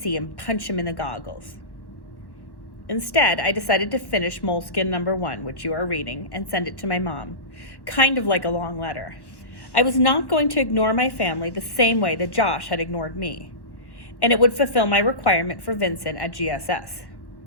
and punch him in the goggles. Instead, I decided to finish Moleskin number 1, which you are reading, and send it to my mom, kind of like a long letter. I was not going to ignore my family the same way that Josh had ignored me, and it would fulfill my requirement for Vincent at GSS.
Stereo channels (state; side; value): late; right; 1.1 ms